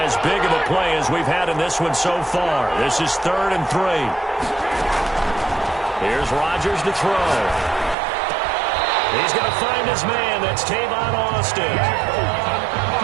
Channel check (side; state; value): left; drops out; at 8.0 s